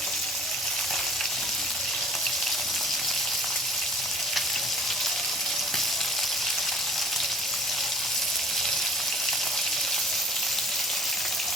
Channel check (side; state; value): both; normal; correlation 0.51